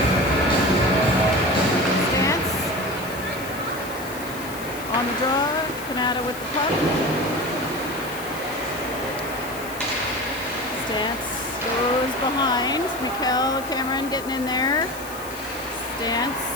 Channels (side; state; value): left; noise; hiss, 14 dB below the sound